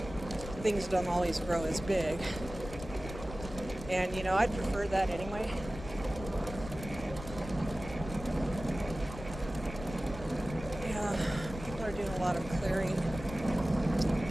Things don't always grow as big. And, you know, I'd prefer that anyway. Yeah, people are doing a lot of clearing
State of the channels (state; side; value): noise; left; rumble, 11 dB below the sound